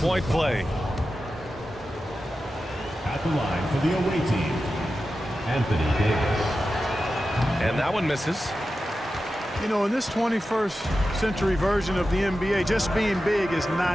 play. At the line for the away team, Anthony Davis. And that one misses. You know, in this 21st century version of the NBA, just being big is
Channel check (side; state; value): both; normal; correlation 0.92